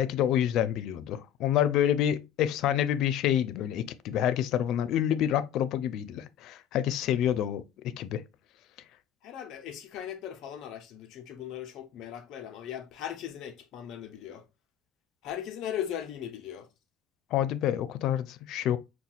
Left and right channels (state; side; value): quieter; right; 10.3 dB